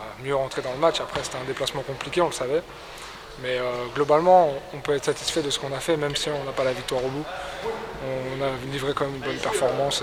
mieux rentrer dans le match. Après, c'était un déplacement compliqué, on le savait. Mais globalement, on peut être satisfait de ce qu'on a fait, même si on n'a pas la victoire au bout. On a livré quand même une bonne performance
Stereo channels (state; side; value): identical; both; correlation 1.00